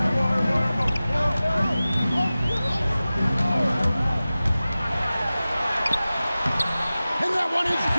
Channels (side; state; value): both; inverted; correlation -0.97